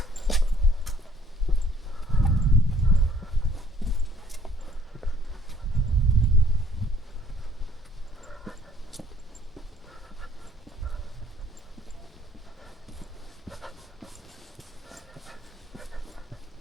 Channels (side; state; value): both; normal; correlation 0.62